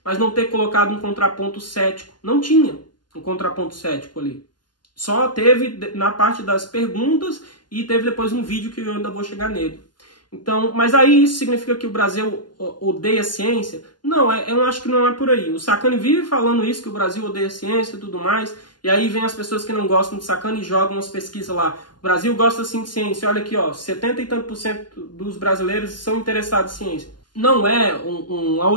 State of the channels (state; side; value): late; right; 0.71 ms